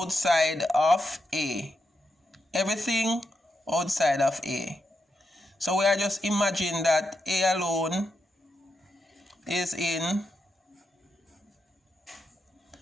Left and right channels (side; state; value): both; normal; correlation 0.85